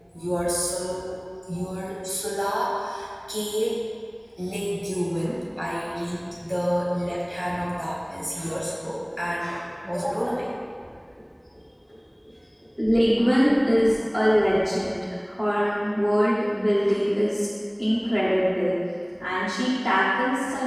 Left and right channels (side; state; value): both; identical; correlation 1.00